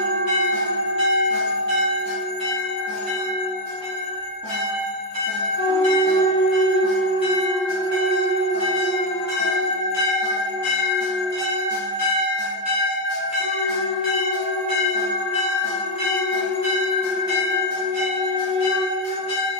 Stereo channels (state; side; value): normal; both; correlation 0.03